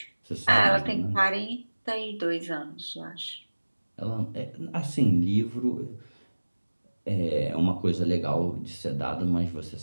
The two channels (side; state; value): both; inverted; correlation -1.00